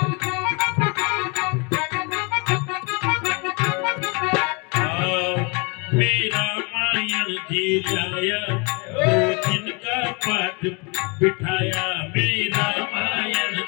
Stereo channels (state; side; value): quieter; right; 31.1 dB